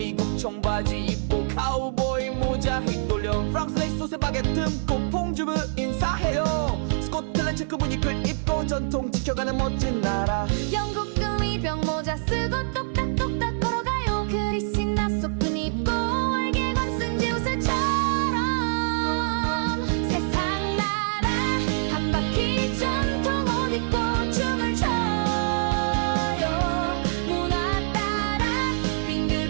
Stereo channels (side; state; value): left; silent; digital silence